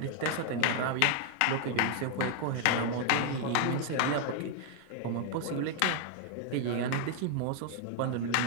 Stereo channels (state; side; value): different; both; correlation 0.00